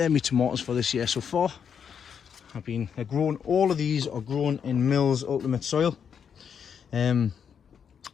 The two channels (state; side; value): quieter; right; 7.4 dB